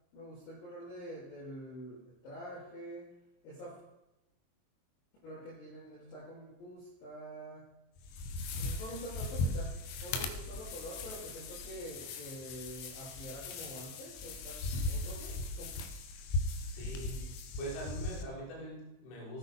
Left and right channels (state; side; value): late; right; 23 ms